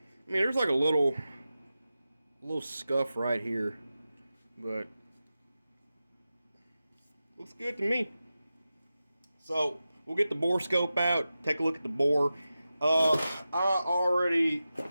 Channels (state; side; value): inverted; both; correlation -0.93